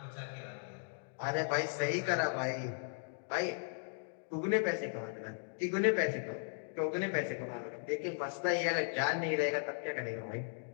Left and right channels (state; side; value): silent; right; digital silence